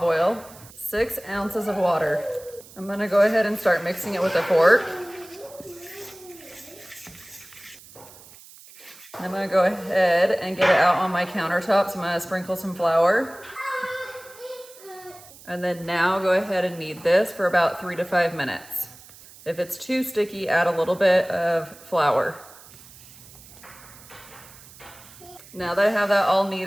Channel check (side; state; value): right; noise; hiss, 21 dB below the sound